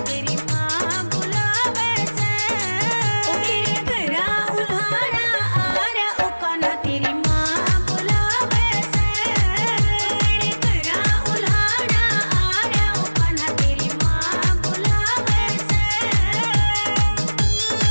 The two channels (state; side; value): inverted; both; correlation -1.00